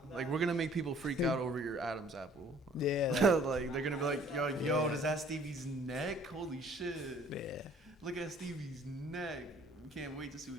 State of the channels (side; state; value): both; normal; correlation 0.55